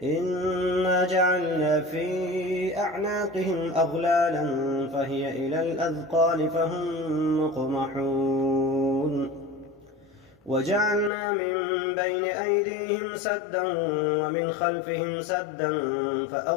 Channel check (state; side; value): drops out; right; at 11.1 s